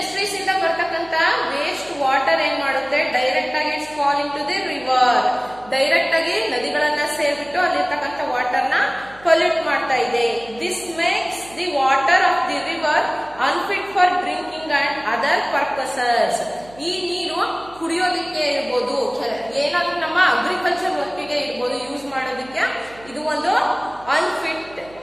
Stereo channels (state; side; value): noise; right; hum, 22 dB below the sound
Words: ಇಂದ ಬರ್ತಕ್ಕಂಥ ವೇಸ್ಟ್ ವಾಟರ್ ಏನ್ ಮಾಡುತ್ತೆ? ಡೈರೆಕ್ಟ್ ಆಗಿ it's fall into the river. Direct ಆಗಿ ನದಿಗಳನ್ನ ಸೇರ್ಬಿಟ್ಟು ಅಲ್ಲಿರ್ತಕ್ಕಂಥ ವಾಟರ್ ನ ಪೊಲ್ಯೂಟ್ ಮಾಡ್ತಾ ಇದೆ. This makes the water of the river unfit for drinking and other purposes. ಈ ನೀರು ಕುಡಿಯೋದಕ್ಕೆ ಇರ್ಬೋದು, ಏನಾದ್ರೂ ನಮ್ಮ ಅಗ್ರಿಕಲ್ಚರ್ ವರ್ಕಿಗೆ ಇರ್ಬೋದು, ಯೂಸ್ ಮಾಡೋದಕ್ಕೆ ಇದು ಒಂದು ಅನ್ಫಿಟ್